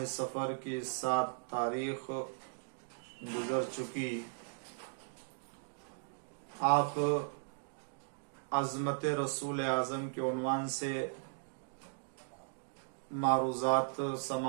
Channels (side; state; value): left; silent; digital silence